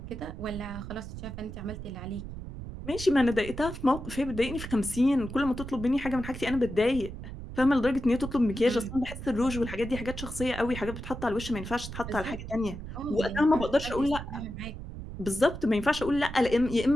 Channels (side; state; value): right; noise; rumble, 9 dB below the sound